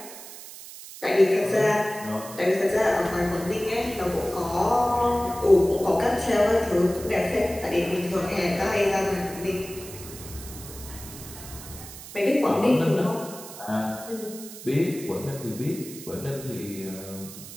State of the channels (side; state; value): right; noise; hiss, 14 dB below the sound